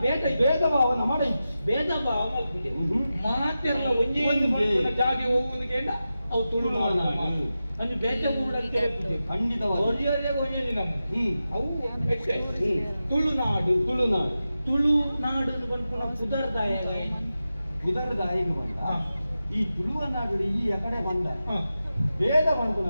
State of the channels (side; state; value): both; inverted; correlation -0.92